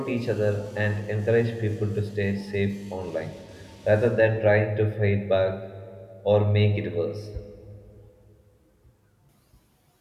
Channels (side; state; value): both; identical; correlation 1.00